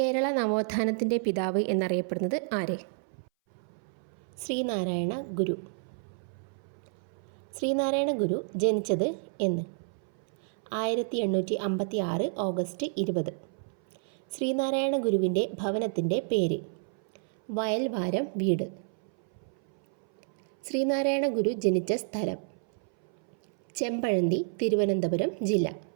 നവോത്ഥാനത്തിൻ്റെ പിതാവ് എന്നറിയപ്പെടുന്നത് ആര്? ശ്രീനാരായണ ഗുരു. ശ്രീനാരായണ ഗുരു ജനിച്ചത് എന്ന്? 1856 ഓഗസ്റ്റ് 20. ശ്രീനാരായണ ഗുരുവിൻ്റെ ഭവനത്തിൻ്റെ പേര്? വയൽവാരം വീട്. ശ്രീനാരായണ ഗുരു ജനിച്ച സ്ഥലം? ചെമ്പഴന്തി, തിരുവനന്തപുരം ജില്ല.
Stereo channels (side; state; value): left; silent; 58 dB below the other